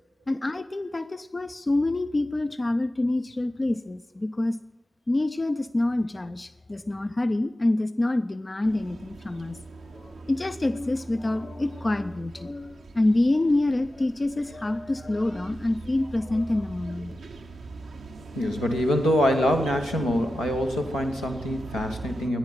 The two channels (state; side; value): normal; both; correlation 0.94